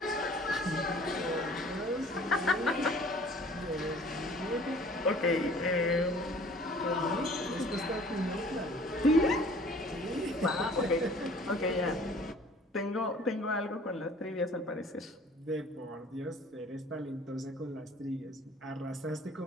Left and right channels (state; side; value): normal; both; correlation 0.52